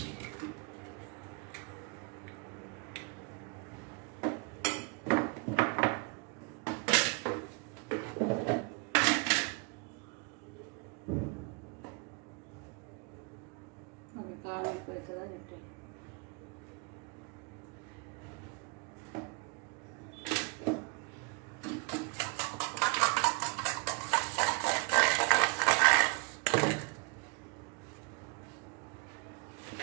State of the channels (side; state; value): left; quieter; 33.7 dB